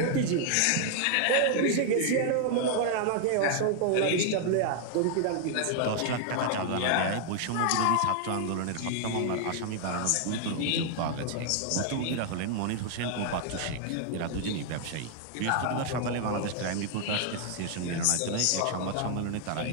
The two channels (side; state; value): both; different; correlation 0.00